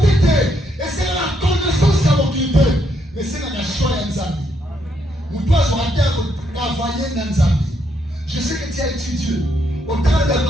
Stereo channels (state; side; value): normal; both; correlation 0.75